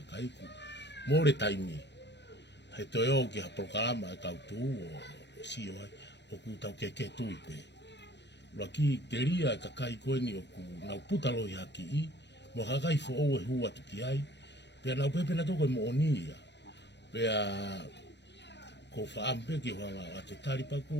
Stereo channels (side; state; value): right; late; 0.50 ms